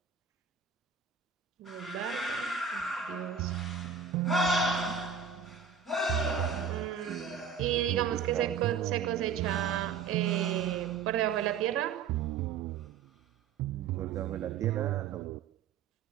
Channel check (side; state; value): left; quieter; 6.7 dB